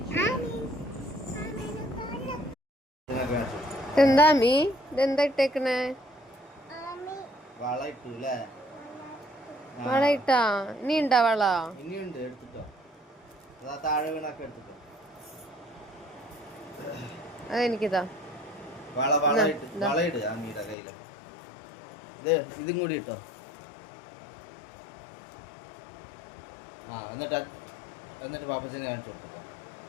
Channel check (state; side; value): drops out; right; at 20.8 s